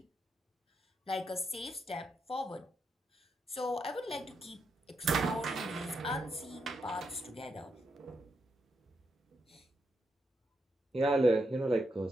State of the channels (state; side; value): normal; both; correlation 0.82